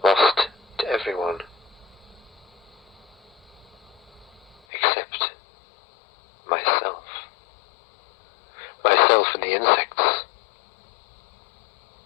lost to everyone, except myself. Myself and the insects.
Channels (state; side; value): drops out; right; at 4.5 s